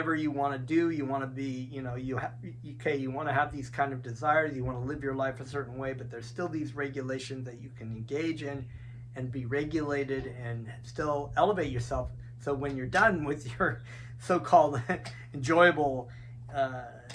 you want to do, you want to be, you want to have these kind of desires, you want to live your life a certain way, but there's still these regulations that you can engage in and be regulated and still elevate yourself. So when you're done with your so-called enjoyable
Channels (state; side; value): identical; both; correlation 1.00